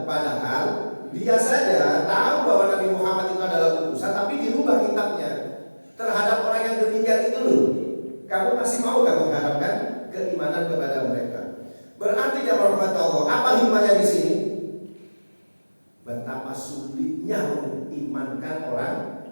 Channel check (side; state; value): both; inverted; correlation -1.00